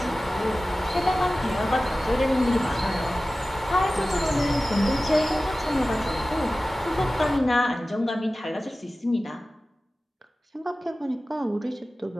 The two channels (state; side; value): normal; both; correlation 0.96